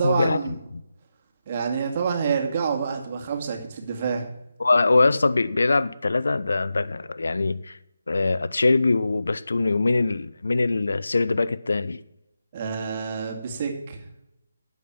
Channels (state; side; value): inverted; both; correlation -0.90